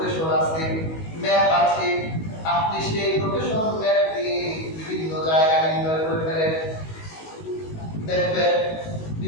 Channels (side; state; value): right; late; 19 ms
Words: আছে, ম্যাপ আছে, আপনি সেই লোকেশন ম্যাপ দিয়ে বিভিন্ন জায়গা নির্ণয় করে ফেলেন। দেখবেন